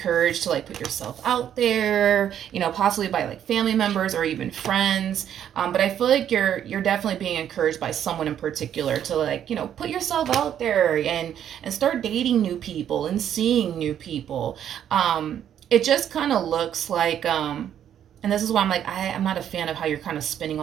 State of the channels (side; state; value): left; quieter; 9.9 dB